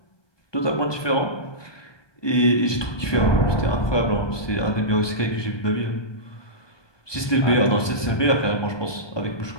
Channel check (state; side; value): late; right; 1.2 ms